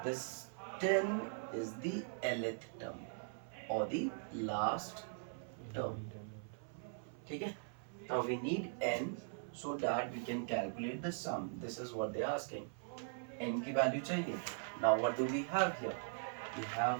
this 10 is the nth term or the last term. ठीक है, now we need n so that we can calculate the sum. This is what they are asking. n की वैल्यू चाहिए. Now what do we have here? We have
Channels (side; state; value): left; silent; 50 dB below the other